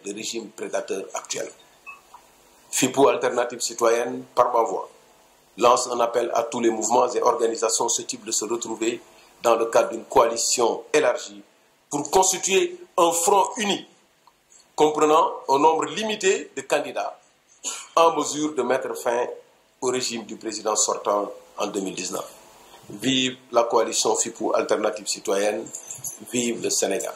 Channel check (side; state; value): both; identical; correlation 1.00